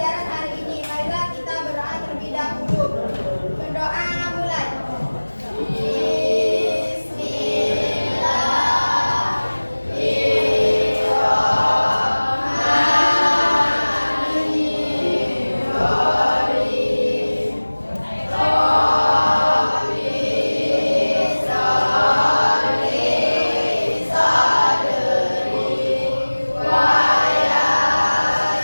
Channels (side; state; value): both; inverted; correlation -1.00